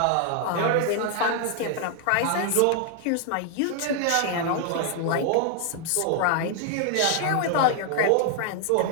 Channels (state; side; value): different; both; correlation 0.00